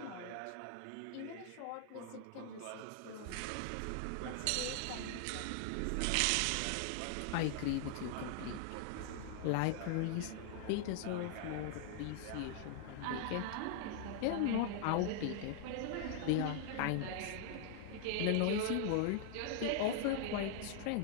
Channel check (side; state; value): both; different; correlation 0.00